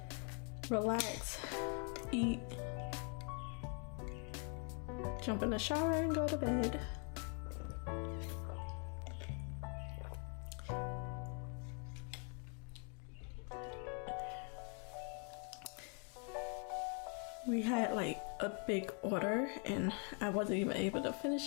relax, eat, jump in the shower and go to bed. We had like a big order and I wasn't even able to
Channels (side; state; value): right; quieter; 39.6 dB